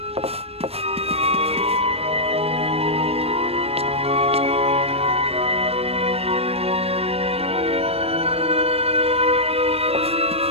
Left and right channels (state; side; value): late; left; 0.29 ms